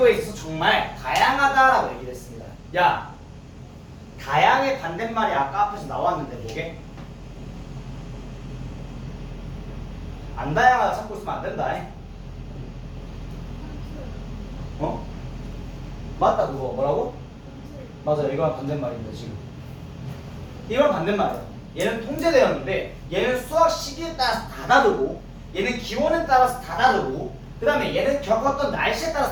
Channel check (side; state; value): both; identical; correlation 1.00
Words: 있어서 정말 다양하다라고 얘기를 했습니다. 야, 다양의 반대말이 아까 앞에서 나왔는데 뭐게? 안 다양하다 찾고 있으면 안 된다. 어? 맞다 그거. 뭐라고? 맞아, 이거랑 반대말입니다 지금. 이건 반대말이야. 얘는 통제되었는데 얘는 수확 시기에 따라서 다 다르고, 얘는 기온에 따라서 다 다르고, 그 다음에 얘는 겪었던 날씨에